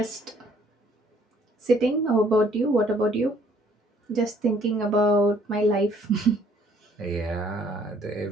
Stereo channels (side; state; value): both; normal; correlation 0.61